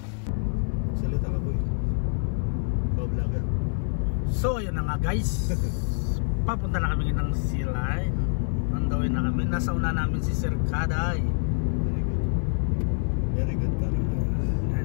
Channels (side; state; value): right; silent; 61 dB below the other